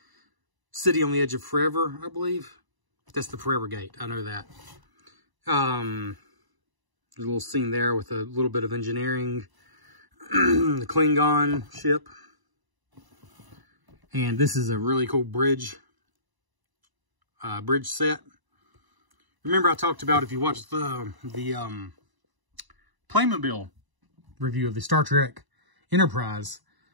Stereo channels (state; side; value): late; left; 1.0 ms